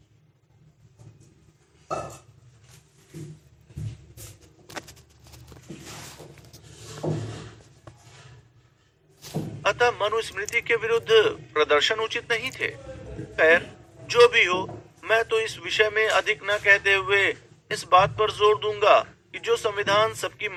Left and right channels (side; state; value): both; identical; correlation 1.00